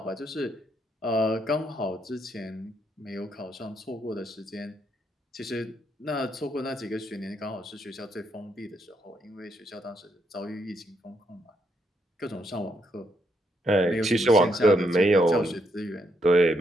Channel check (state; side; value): normal; both; correlation 0.76